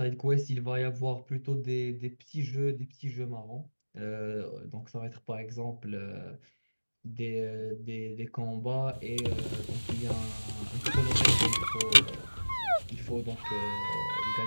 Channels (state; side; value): inverted; both; correlation -1.00